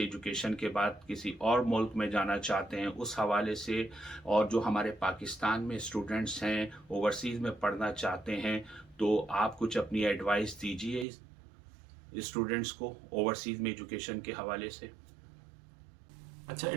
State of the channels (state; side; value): drops out; left; at 11.1 s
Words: एजुकेशन के बाद किसी और मुल्क में जाना चाहते हैं, उस हवाले से, और जो हमारे पाकिस्तान में स्टूडेंट्स हैं ओवरसीज़ में पढ़ना चाहते हैं, तो आप कुछ अपनी एडवाइस दीजिए स्टूडेंट्स को ओवरसीज़ में एजुकेशन के हवाले से। अच्छा,